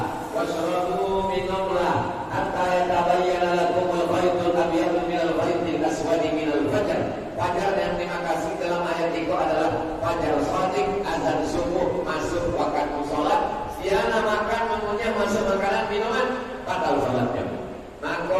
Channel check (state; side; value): identical; both; correlation 1.00